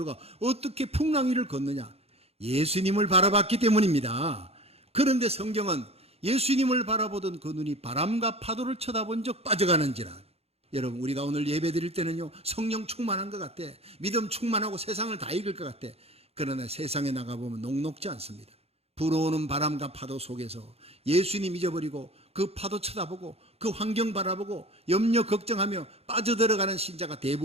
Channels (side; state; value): left; late; 0.29 ms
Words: 어떻게 풍랑 위를 걷느냐? 예수님을 바라봤기 때문입니다. 그런데 성경은 예수님을 바라보던 그 눈이 바람과 파도를 쳐다본 적 빠져가는지라. 여러분, 우리가 오늘 예배 드릴 때는요 성령 충만한 것 같아. 믿음 충만하고 세상을 다 이길 것 같아. 그러나 세상에 나가보면 녹록지 않습니다. 불어오는 바람과 파도 속에서 예수님 잊어버리고 그 파도 쳐다보고 그 환경 바라보고 염려 걱정하며 빠져들어가는 신자가